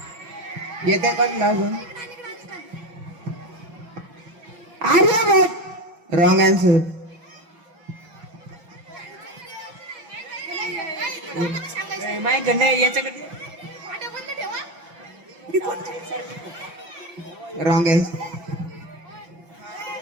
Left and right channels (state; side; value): late; left; 5.7 ms